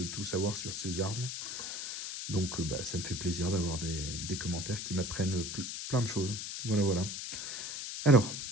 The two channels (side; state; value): left; noise; hiss, 5 dB below the sound